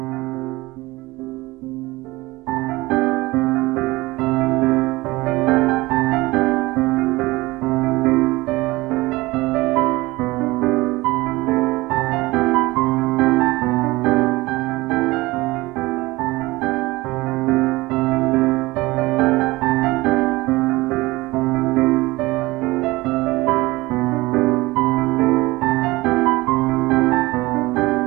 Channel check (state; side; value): quieter; left; 20.7 dB